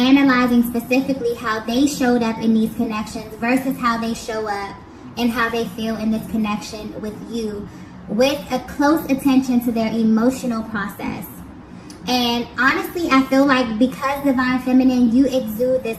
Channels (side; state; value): both; identical; correlation 1.00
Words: specifically how they showed up in these connections versus how they show up and how they feel in this connection with you, with a close attention to their emotional process. And honestly, I feel like because Divine Feminine, you exude this